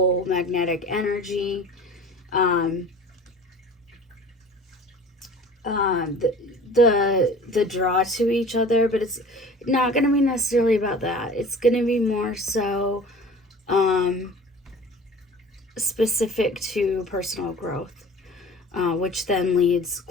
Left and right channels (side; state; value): both; normal; correlation 0.43